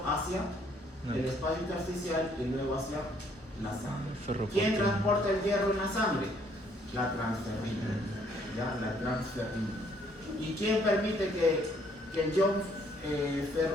hacia el espacio intersticial y luego hacia la sangre. Ferroportina. ¿Quién transporta el hierro en la sangre? La transferrina. ¿Ya? La transferrina. ¿Y quién permite que el ion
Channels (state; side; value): normal; both; correlation 0.65